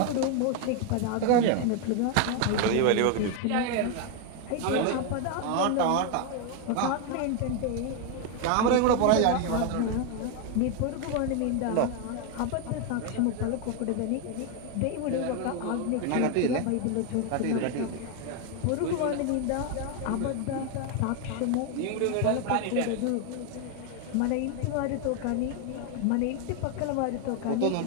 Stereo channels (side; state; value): both; different; correlation 0.01